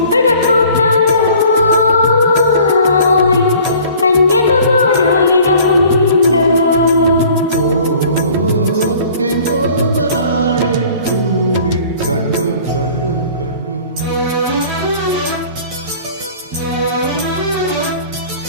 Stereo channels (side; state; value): both; inverted; correlation -0.50